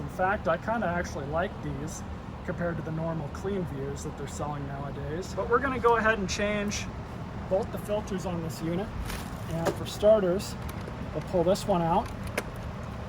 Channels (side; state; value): both; identical; correlation 1.00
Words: fact, I kind of actually like these compared to the normal clean views that they're selling nowadays. But we're going to go ahead and change both the filters on this unit. And for starters, we'll pull this one out.